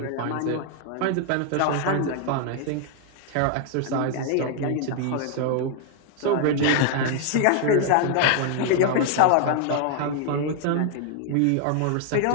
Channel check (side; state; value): both; different; correlation 0.00